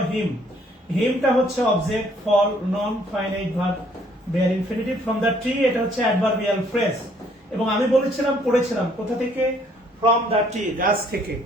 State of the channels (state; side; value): normal; both; correlation 0.63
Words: হিম, হিমটা হচ্ছে অবজেক্ট, ফল non finite verb bare infinitive. From the tree এটা হচ্ছে অ্যাডভার্বিয়াল ফ্রেজ, এবং আমি বলেছিলাম পড়েছিলাম কোথা থেকে, ফ্রম দ্য ট্রি, গাছ থেকে।